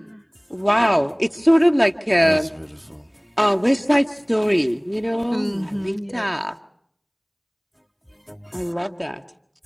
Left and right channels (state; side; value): identical; both; correlation 1.00